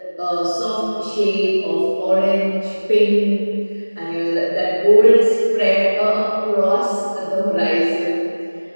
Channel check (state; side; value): inverted; both; correlation -1.00